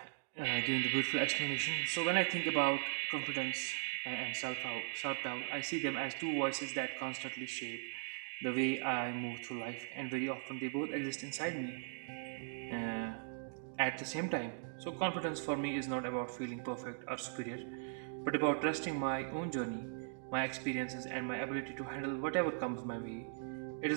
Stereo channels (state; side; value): silent; left; digital silence